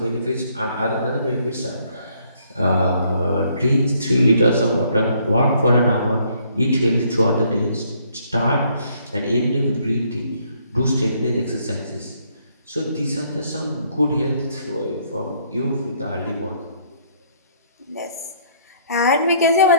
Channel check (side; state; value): both; inverted; correlation -0.66